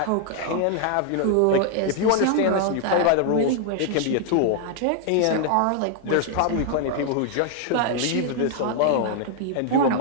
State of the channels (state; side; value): different; both; correlation 0.00